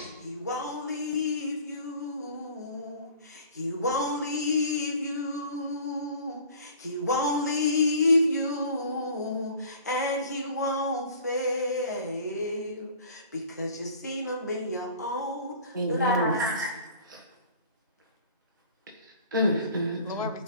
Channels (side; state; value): both; inverted; correlation -0.46